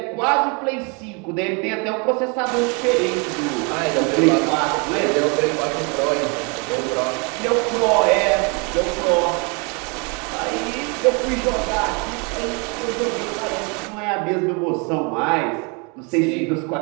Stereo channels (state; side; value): quieter; left; 32.8 dB